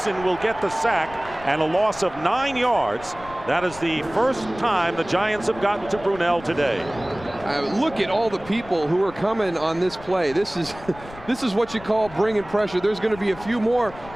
will get the sack and a loss of 9 yards. That is the first time the Giants have gotten to Brunell today. Look at all the people who are coming on this play. This is what you call bringing pressure. There's going to be a few more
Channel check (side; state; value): left; noise; rumble, 17 dB below the sound